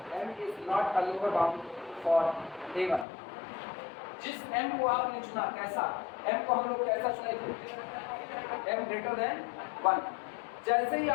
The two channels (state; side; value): drops out; right; at 3.1 s